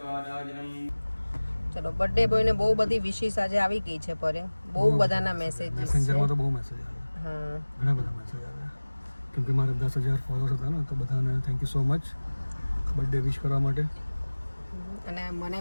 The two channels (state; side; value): inverted; both; correlation -1.00